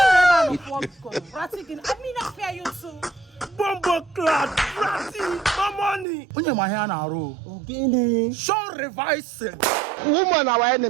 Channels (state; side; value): drops out; left; at 6.1 s